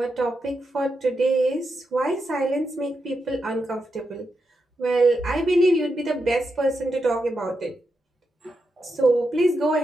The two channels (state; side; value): normal; both; correlation 0.85